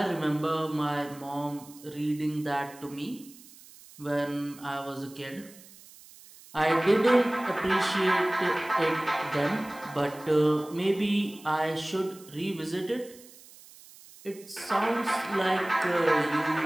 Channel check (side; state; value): right; noise; hiss, 21 dB below the sound